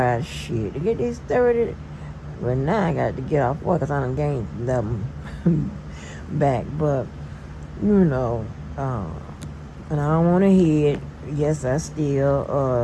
shit to get these 30. But now I got to get off work because I done gained 11 back. But, and I don't want to hit. Yes, I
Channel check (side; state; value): both; identical; correlation 1.00